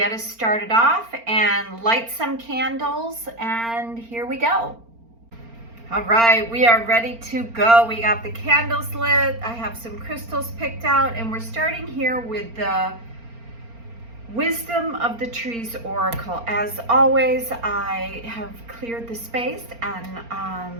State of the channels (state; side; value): late; left; 4.3 ms